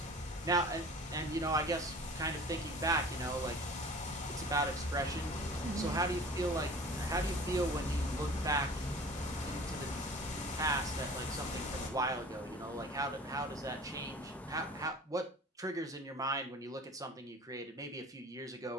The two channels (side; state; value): both; normal; correlation 0.43